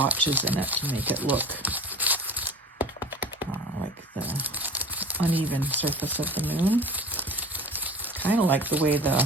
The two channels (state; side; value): normal; both; correlation 0.39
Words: in it to make it look like the uneven surface of the moon. Kind of like the way the